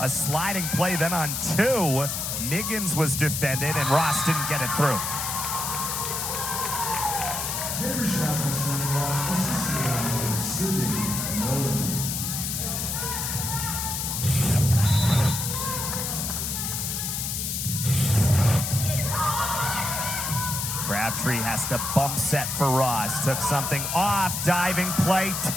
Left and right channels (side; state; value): left; noise; hiss, 2 dB below the sound